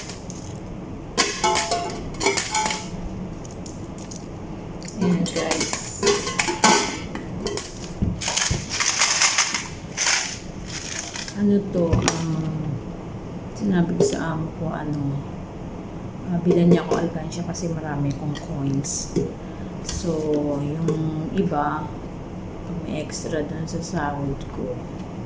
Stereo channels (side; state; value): both; identical; correlation 1.00